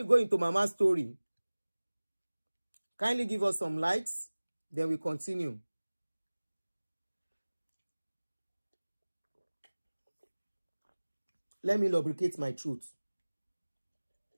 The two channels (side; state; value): both; inverted; correlation -1.00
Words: go into Mama's story, kindly give us some likes. Then we continue. Let me lubricate my truth.